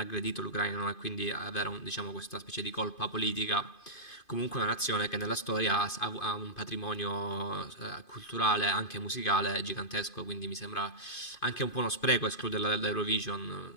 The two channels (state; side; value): late; right; 2.5 ms